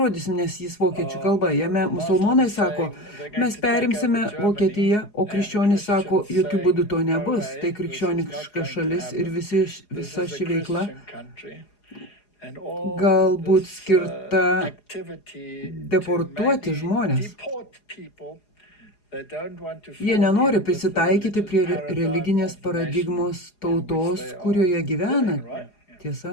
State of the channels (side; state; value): right; late; 4.8 ms